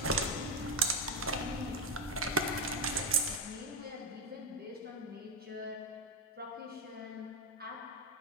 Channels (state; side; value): normal; both; correlation 0.08